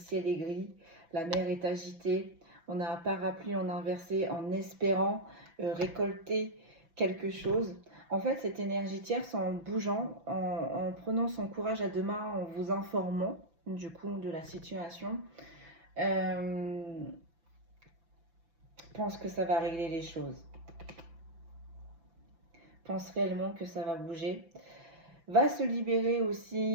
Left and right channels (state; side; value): late; left; 6.0 ms